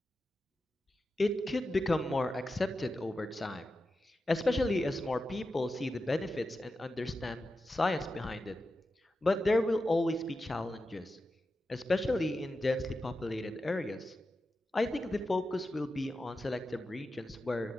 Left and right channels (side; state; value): both; normal; correlation 0.91